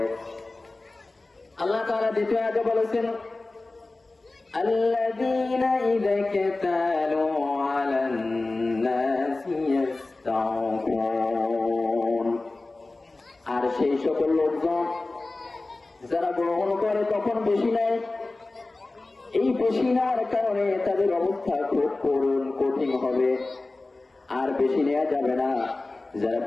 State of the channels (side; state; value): right; quieter; 3.2 dB